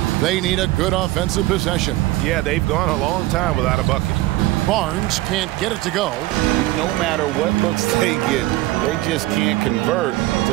They need a good offensive possession. Yeah, they've gone a long time without a bucket. Barnes can't get it to go. No matter what looks they get, they just can't convert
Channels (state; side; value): quieter; left; 17.7 dB